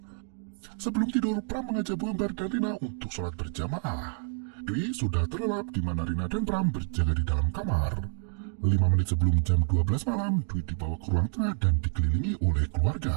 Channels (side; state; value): left; silent; 59 dB below the other